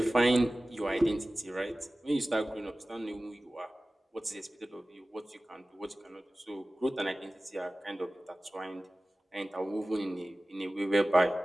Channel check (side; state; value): both; normal; correlation 0.97